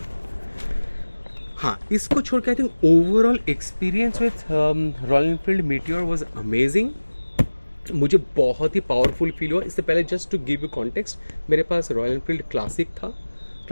हाँ, इसको छोड़ के I think overall experience with Royal Enfield Meteor was amazing. मुझे बहुत ही पावरफुल फील हुआ। इससे पहले just to give you context, मेरे पास रॉयल एनफील्ड क्लासिक था,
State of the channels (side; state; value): both; inverted; correlation -1.00